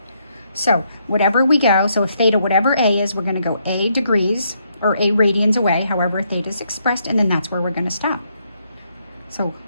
So whatever we go, so if theta, whatever a is, we're going to go a degrees or a radians away, however theta is expressed, and then that's where we're going to stop. So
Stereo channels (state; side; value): inverted; both; correlation -0.75